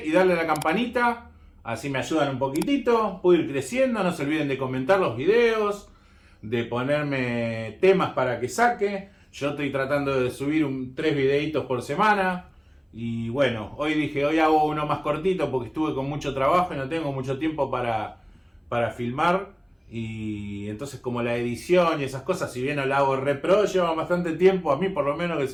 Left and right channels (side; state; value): both; identical; correlation 1.00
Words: y darle a la campanita. Así me ayudan un poquitito. Puedo ir creciendo. No se olviden de comentar los videos, de ponerme temas para que saque. Yo estoy tratando de subir 3 videitos por semana. Y bueno, hoy hago uno más cortito porque estuve con mucho trabajo y no tengo mucho tiempo para filmar. Y entonces como la edición y esas cosas, si bien no la hago re pro, lleva bastante tiempo. A mí por lo menos que